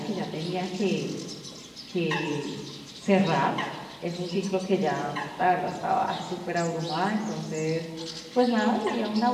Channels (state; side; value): identical; both; correlation 1.00